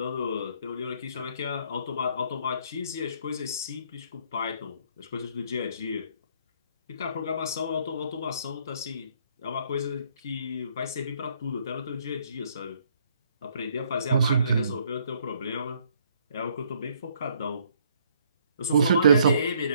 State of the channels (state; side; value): inverted; both; correlation -0.65